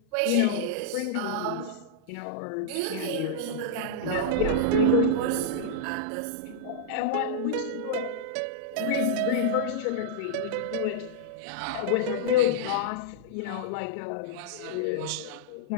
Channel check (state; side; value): different; both; correlation -0.02